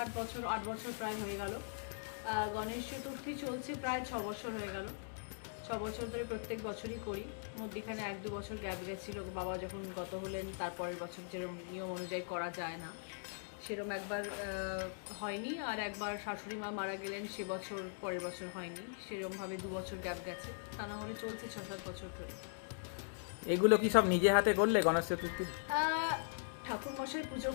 বছর, 8 বছর প্রায় হয়ে গেল। গণেশ চতুর্থী চলছে প্রায় 6 বছর হয়ে গেল। 6 বছর ধরে প্রত্যেক বছরই করি। মধ্যিখানে 1-2 বছর গ্যাপ গেছিল, বাবা যখন গত হলেন তারপরের বছর যেরকম নিয়ম অনুযায়ী করা যায় না সেরকম একবার হয়নি, আর একবার শাশুড়ি মা মারা গেলেন সে বছর, পরের বছর হয়নি, সেরকমভাবে 2 বছর গ্যাপ গেছে। তা না হলে চলছে 6-7 বছর ধরে। এগুলো কি সব নিজে হাতে করলে গণেশ চতুর্থী? ঠাকুরমশাই পুজো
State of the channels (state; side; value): silent; right; digital silence